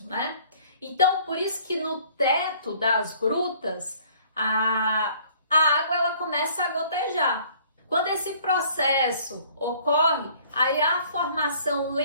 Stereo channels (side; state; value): both; inverted; correlation -0.56